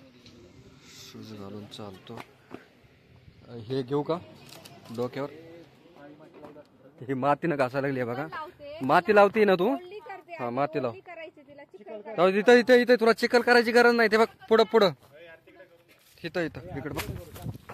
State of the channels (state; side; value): identical; both; correlation 1.00